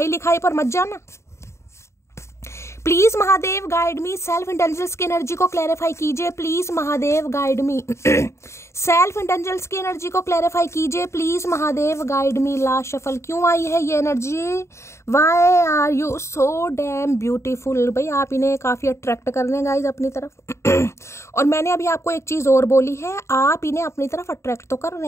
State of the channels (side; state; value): right; late; 0.13 ms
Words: लिखाई पर मत जाना। Please Mahadev guide me, self intelligence की एनर्जी को क्लैरिफाई कीजिए please Mahadev guide me. Self intelligence की एनर्जी को क्लैरिफाई कीजिए please Mahadev guide me. Last shuffle, क्यों आई है ये energy, why are you so damn beautiful. भाई आप इन्हें काफी अट्रैक्ट कर रहे हैं गाइज अपनी तरफ। और मैंने अभी आपको एक चीज और बोली है, आप इन्हें अपनी तरफ अट्रैक्ट तो कर